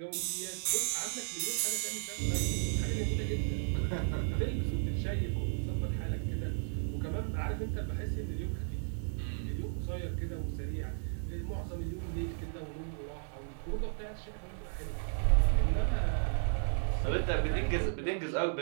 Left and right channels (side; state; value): left; silent; 55 dB below the other